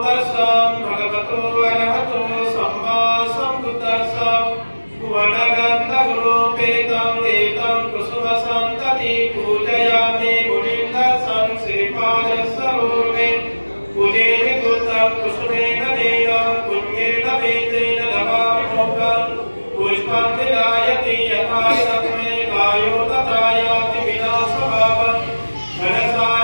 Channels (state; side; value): inverted; both; correlation -1.00